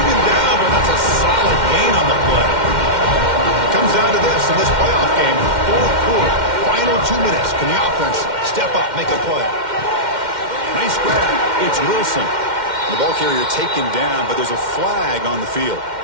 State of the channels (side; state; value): left; late; 2.1 ms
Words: him down, but that's a solid gain on the play. It comes down to this in this playoff game. Fourth quarter. Final 2 minutes. Can the offense step up, make a play? Nice grab. It's Wilson. The ball carrier taken down, but there's a flag on the field.